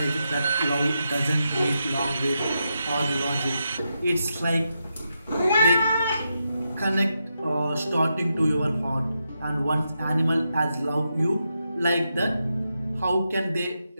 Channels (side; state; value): both; inverted; correlation -0.85